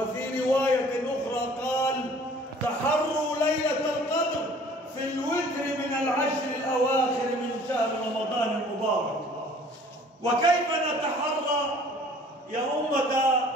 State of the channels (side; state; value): both; normal; correlation 0.52